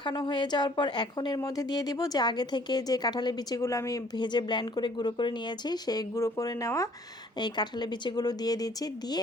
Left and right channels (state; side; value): normal; both; correlation 0.58